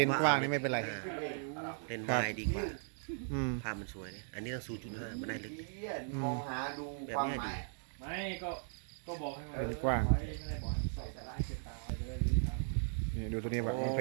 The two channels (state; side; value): silent; left; digital silence